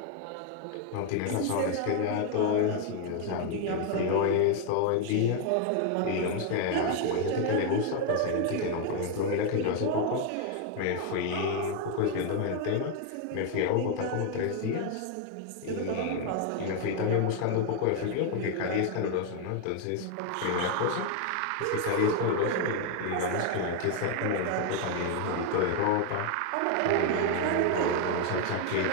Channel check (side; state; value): both; different; correlation 0.01